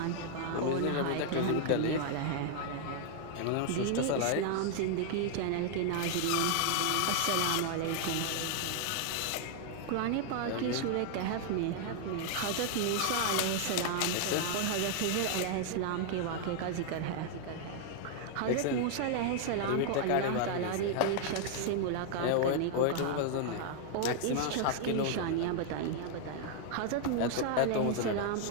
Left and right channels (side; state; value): both; different; correlation 0.00